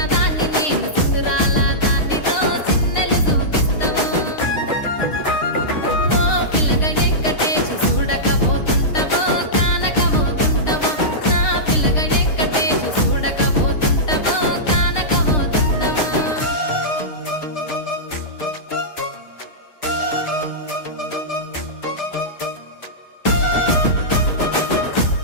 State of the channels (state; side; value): late; right; 6.6 ms